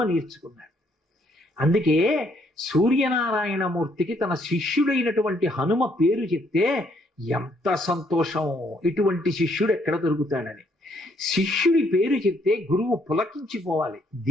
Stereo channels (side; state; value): both; normal; correlation 0.69